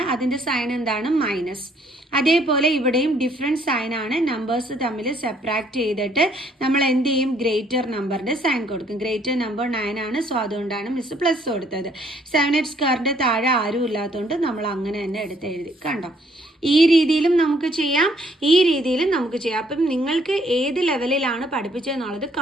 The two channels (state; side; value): normal; both; correlation 0.65